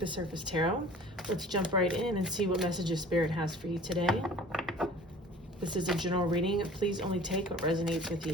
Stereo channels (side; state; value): both; normal; correlation 0.46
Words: Surface Tarot. Let's jump right in and see what messages Spirit has for you today. This is a general reading. Please only take what resonates with